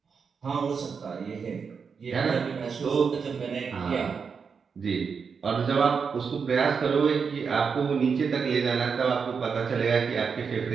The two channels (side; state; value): left; quieter; 5.8 dB